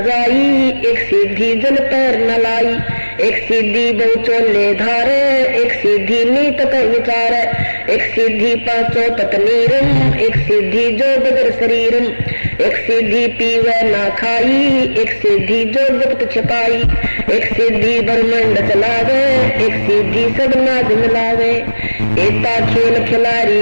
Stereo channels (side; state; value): both; inverted; correlation -1.00